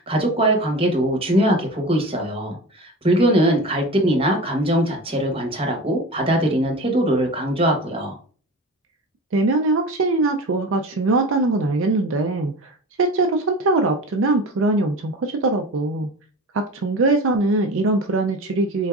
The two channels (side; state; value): both; normal; correlation 0.33